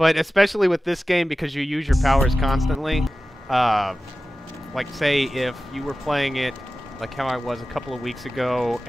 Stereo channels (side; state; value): both; normal; correlation 0.95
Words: especially with this game, because you use your powers constantly. Like, say, if you were playing it like how I was a couple of weeks ago,